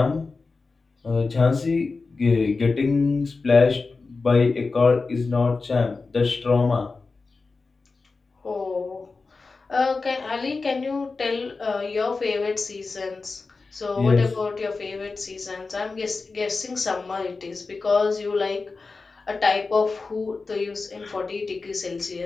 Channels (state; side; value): quieter; right; 4.1 dB